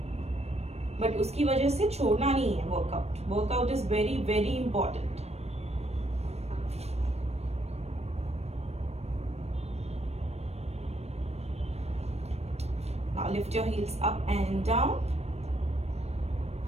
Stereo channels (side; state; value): left; late; 0.31 ms